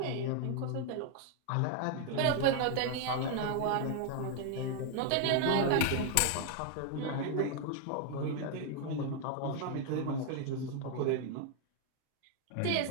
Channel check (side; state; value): both; different; correlation 0.00